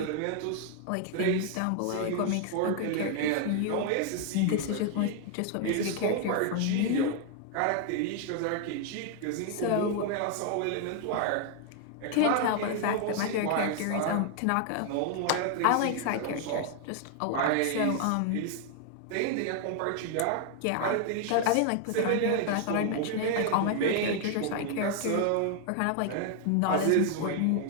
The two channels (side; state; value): both; different; correlation 0.00